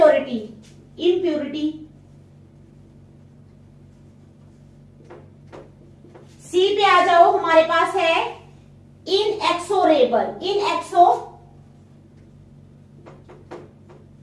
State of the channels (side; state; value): both; identical; correlation 1.00